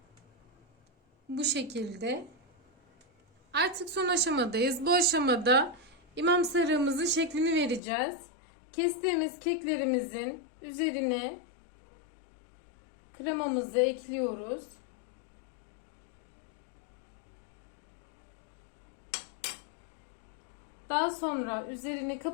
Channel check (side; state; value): right; drops out; at 7.8 s